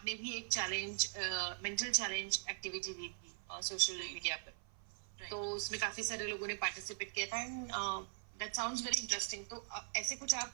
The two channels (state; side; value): silent; left; 50 dB below the other